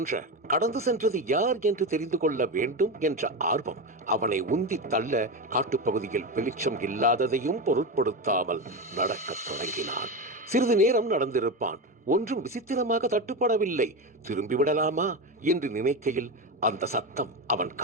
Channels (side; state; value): both; normal; correlation 0.17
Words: கடந்து சென்றது யார் என்று தெரிந்து கொள்ள வேண்டும் என்ற ஆர்வம் அவனை உந்தி தள்ள காட்டுப்பகுதியில் வெளிச்சம் இல்லாததையும் பொருட்படுத்தாமல் நடக்கத் தொடங்கினான். சிறிது நேரம் நடந்திருப்பான். ஒன்றும் விசித்திரமாக தட்டுப்படவில்லை. திரும்பிவிடலாமா என்று நினைக்கையில் அந்த சத்தம் அவன்